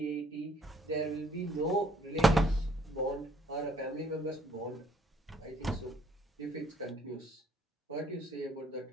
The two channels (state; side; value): normal; both; correlation 0.64